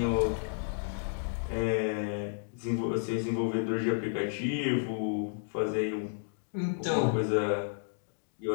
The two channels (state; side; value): silent; right; digital silence